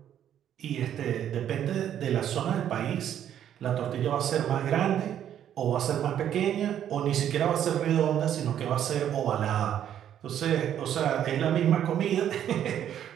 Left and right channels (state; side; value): quieter; left; 10.2 dB